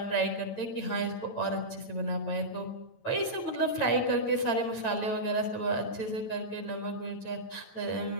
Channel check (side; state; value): right; late; 9.0 ms